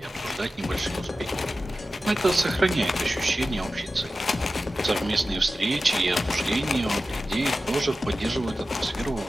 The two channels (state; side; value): normal; both; correlation 0.94